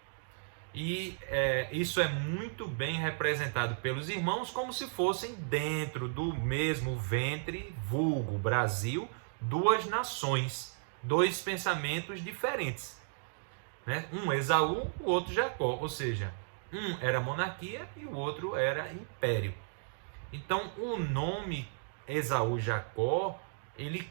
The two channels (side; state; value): left; silent; digital silence